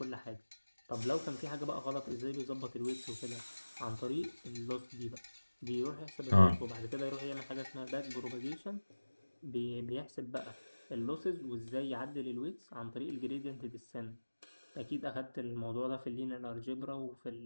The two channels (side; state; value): both; inverted; correlation -1.00